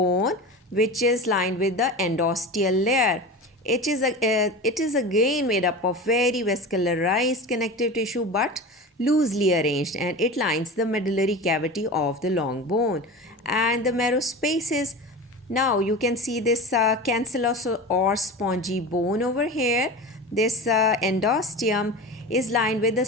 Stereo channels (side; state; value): both; normal; correlation 0.30